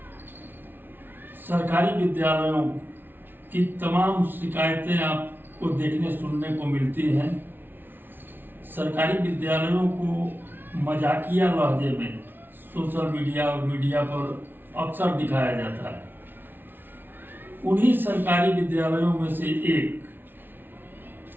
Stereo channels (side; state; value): left; late; 0.097 ms